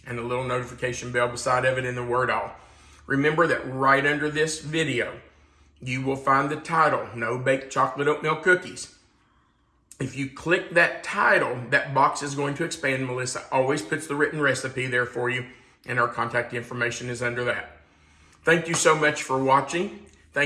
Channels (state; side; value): identical; both; correlation 1.00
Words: and the little notification bell beside of it in the word all. Remember that right under this video, you will find the title, No Bake Chocolate Oatmeal Cookies. If you click that title, that box is going to expand. Melissa always puts the written recipe there for you, and our contact information is under that. Thank you so much for watching.